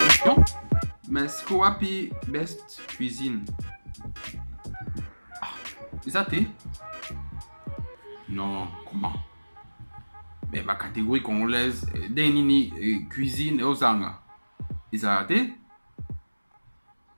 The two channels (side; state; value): both; inverted; correlation -1.00